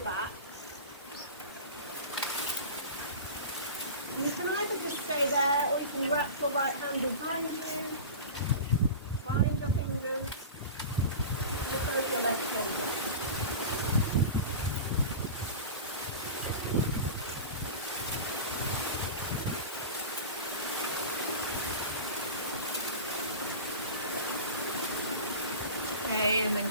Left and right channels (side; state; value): both; inverted; correlation -0.32